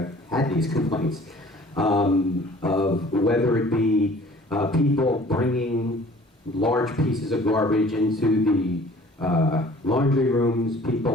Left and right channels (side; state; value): both; normal; correlation 0.51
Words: had these complaints, of whether it be people bringing large pieces of garbage into the laundry rooms,